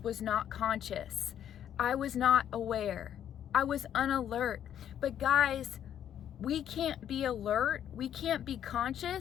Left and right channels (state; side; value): quieter; right; 10.0 dB